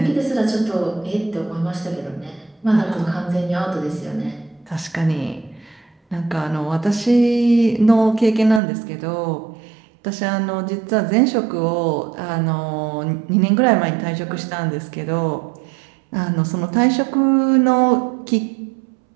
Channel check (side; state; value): left; drops out; at 8.6 s